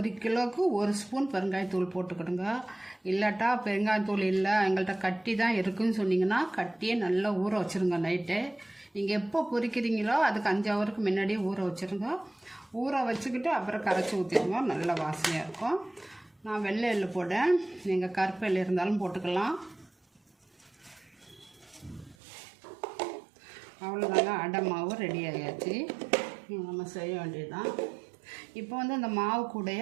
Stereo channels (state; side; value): drops out; left; at 22.2 s